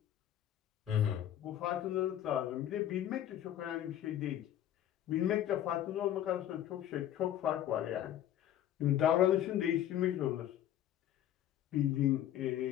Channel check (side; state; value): right; quieter; 11.6 dB